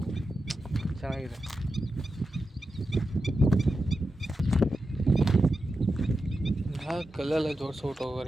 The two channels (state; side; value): normal; both; correlation 0.90